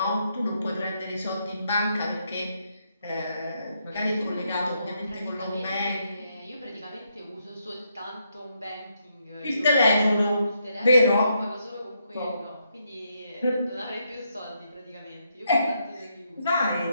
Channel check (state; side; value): inverted; both; correlation -0.78